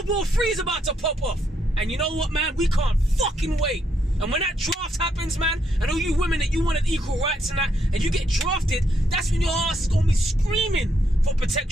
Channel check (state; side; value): normal; both; correlation 0.76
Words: War III is about to pop off. And you know what, man? We can't fucking wait. And when that draft happens, man, and all you women that you wanted equal rights and that, and you get drafted, that's when your ass is going to be screaming for